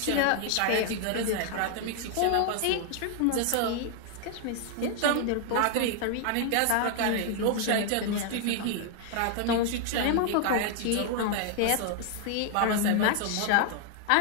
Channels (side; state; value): both; different; correlation 0.00